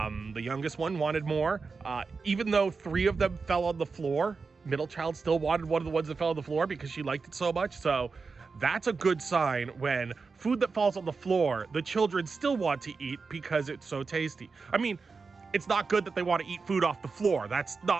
youngest one wanted more. Even though 3 of them fell on the floor, middle child still wanted one of the ones that fell on the floor because she liked it so much. So that's a good sign when food that falls on the floor, the children still want to eat because it's so tasty. I mean, it's not good that they want to eat food off the floor. That's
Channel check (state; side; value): quieter; left; 4.6 dB